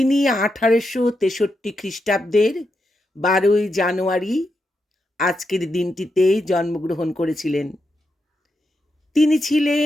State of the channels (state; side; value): normal; both; correlation 0.85